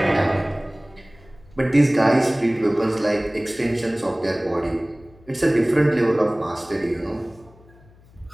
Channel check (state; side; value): noise; left; hum, 27 dB below the sound